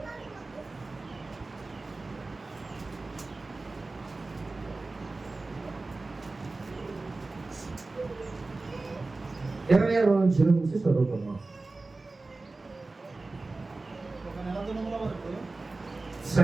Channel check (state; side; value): quieter; left; 3.4 dB